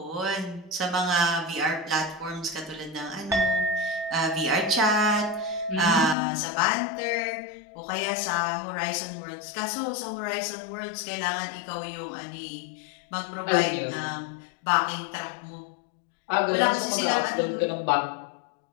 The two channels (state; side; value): drops out; right; at 6.2 s